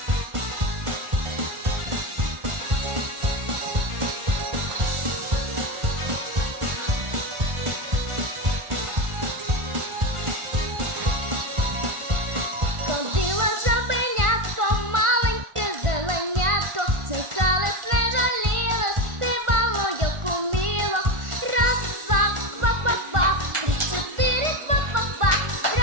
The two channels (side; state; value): left; late; 1.4 ms